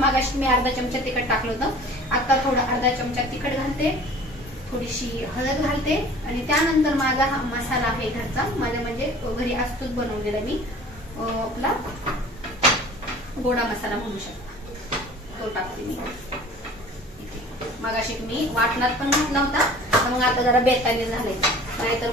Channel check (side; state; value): both; normal; correlation 0.45